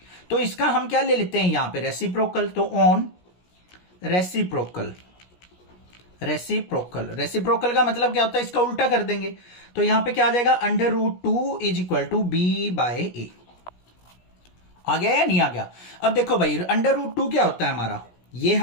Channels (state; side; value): late; right; 17 ms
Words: तो इसका हम क्या ले लेते हैं यहां पे, रेसिप्रोकल। तो ऑन रेसिप्रोकल का मतलब क्या होता है, इसका उल्टा कर देंगे। तो यहां पे क्या आ जाएगा, √2 इज इक्वल टू b/a। आ गया या नहीं आ गया। अब देखो भाई √2 क्या होता है हमारा, ये